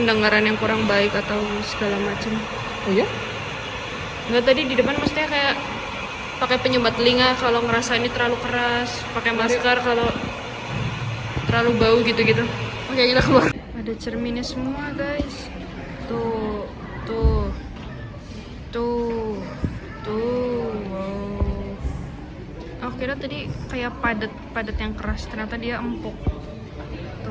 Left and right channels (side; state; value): both; identical; correlation 1.00